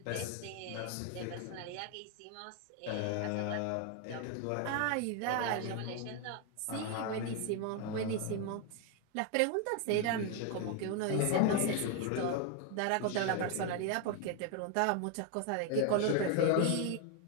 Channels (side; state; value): both; different; correlation 0.01